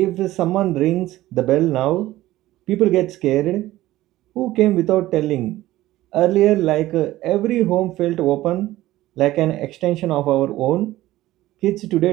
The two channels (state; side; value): quieter; left; 16.0 dB